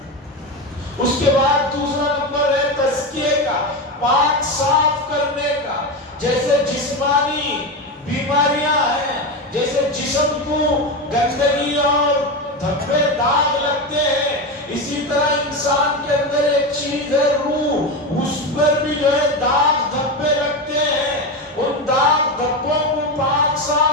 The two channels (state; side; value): normal; both; correlation 0.17